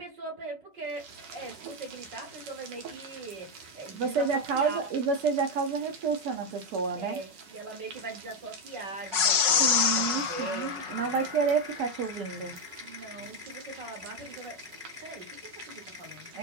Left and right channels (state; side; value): late; left; 5.4 ms